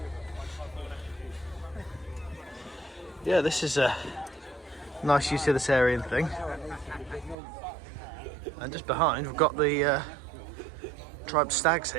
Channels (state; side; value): drops out; left; at 7.4 s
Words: Yeah, this is a nice utilitarian thing. And just behind, we've got the Tribe Stags